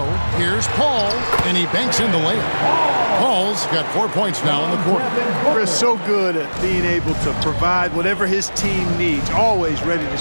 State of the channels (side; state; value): both; inverted; correlation -1.00